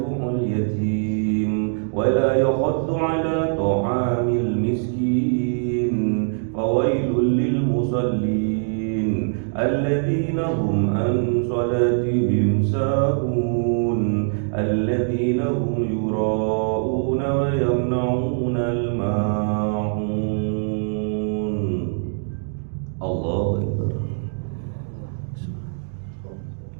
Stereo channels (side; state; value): left; silent; digital silence